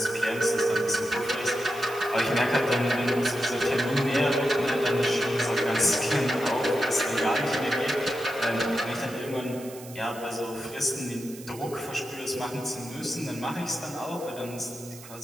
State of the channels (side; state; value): right; noise; hiss, 17 dB below the sound